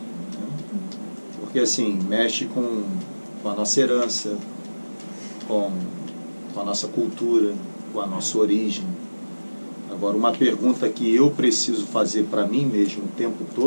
Porque assim, mexe com a nossa herança, com a nossa cultura, com a nossa origem. Agora, uma pergunta que eu preciso fazer para mim mesmo o tempo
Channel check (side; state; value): both; inverted; correlation -1.00